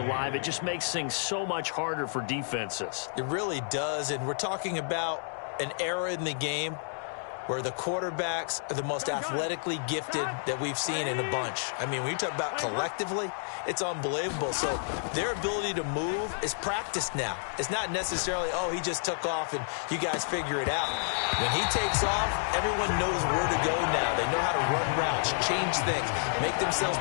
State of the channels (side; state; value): right; silent; digital silence